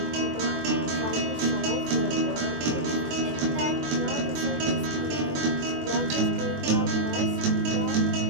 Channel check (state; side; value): late; left; 23 ms